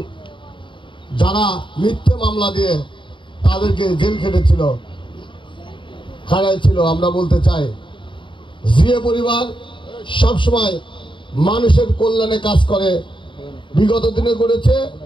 যারা মিথ্যে মামলা দিয়ে তাদেরকে জেল খেটেছিল, খাড়াইছিল, আমরা বলতে চাই জিয়া পরিবার সবসময় মানুষের কল্যাণে কাজ করে, বিগত দিনে করেছে,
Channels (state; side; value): late; right; 0.24 ms